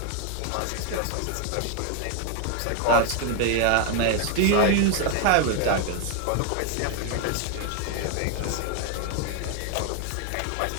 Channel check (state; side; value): different; both; correlation 0.00